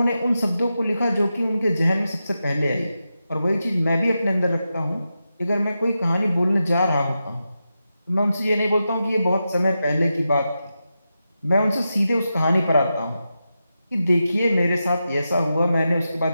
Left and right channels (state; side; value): inverted; both; correlation -0.89